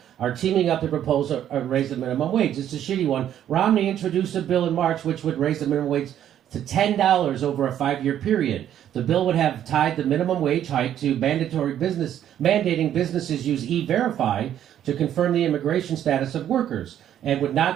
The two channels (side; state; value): left; quieter; 10.7 dB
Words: are teaming up to propose a raise the minimum wage. It's a shitty one. Romney introduced a bill in March which would raise the minimum wage to $10 over a 5-year period. The bill would have tied the minimum wage hike to mandating businesses use E-Verify to confirm the immigration status of workers, and would